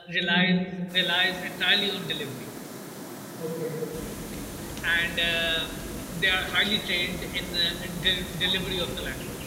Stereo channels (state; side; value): identical; both; correlation 1.00